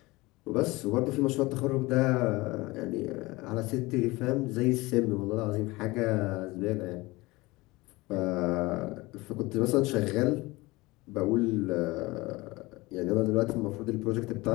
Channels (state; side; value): quieter; right; 21.9 dB